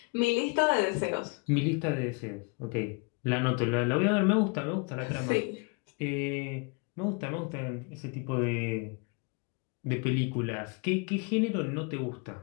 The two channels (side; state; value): right; quieter; 31.3 dB